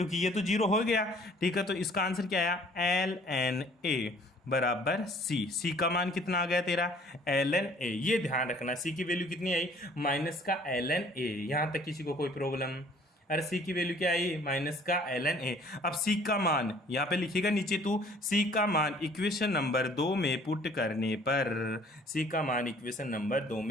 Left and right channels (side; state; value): both; normal; correlation 0.56